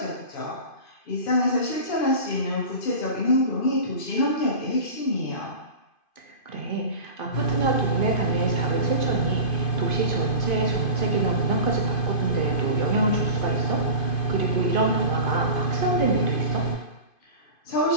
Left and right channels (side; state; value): right; late; 2.5 ms